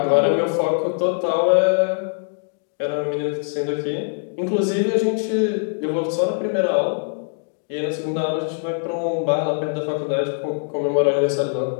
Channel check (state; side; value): silent; right; 63 dB below the other